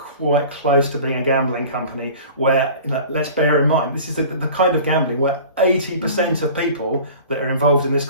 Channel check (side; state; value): both; inverted; correlation -0.41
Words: close to being a gambling company where, let's bear in mind, this is the kind of gambling where 80% of people that are involved in this